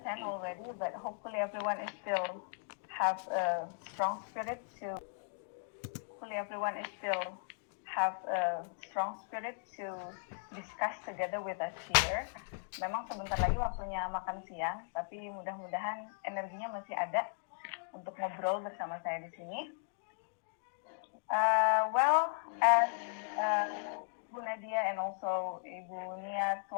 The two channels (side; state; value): right; silent; digital silence